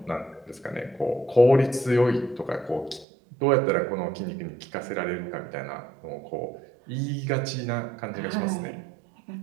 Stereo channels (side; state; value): left; drops out; at 3.1 s